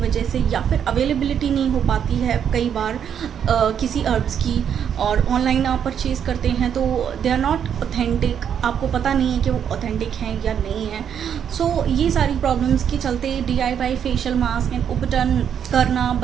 से, या फिर अवेलेबिलिटी नहीं हो पाती है कई बार किसी अर्ब्स की, और ऑनलाइन आप परचेज़ करते हैं तो दे आर नॉट ऑथेंटिक, आपको पता नहीं है कि वो ऑथेंटिक हैं या नहीं है। सो ये सारी प्रॉब्लम्स के चलते DIY फेशियल मास्क एंड उबटन करना,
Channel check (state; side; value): quieter; left; 8.4 dB